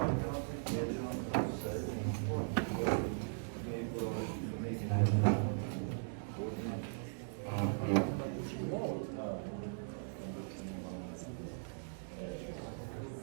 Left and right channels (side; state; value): left; silent; digital silence